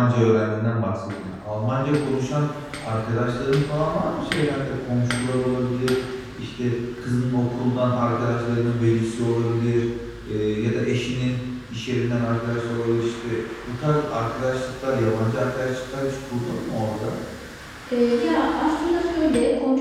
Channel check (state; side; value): identical; both; correlation 1.00